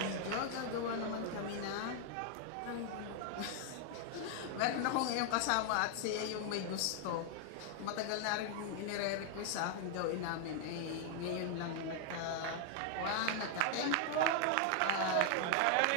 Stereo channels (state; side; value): different; both; correlation 0.00